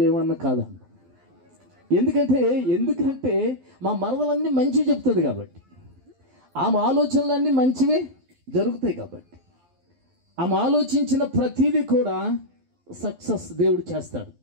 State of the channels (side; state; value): left; late; 12 ms